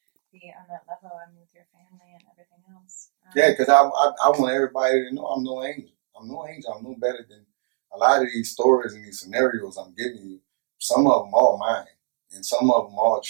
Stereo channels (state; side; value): silent; left; 55 dB below the other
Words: be on that level, and with your family and everything else. Because I want everybody to know I'm no angel. I'm no better than a lot of these stories and these scenarios I'm giving you. Some of them are mine, and some of them are